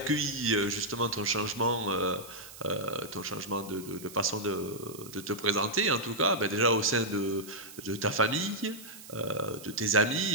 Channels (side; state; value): right; noise; hiss, 16 dB below the sound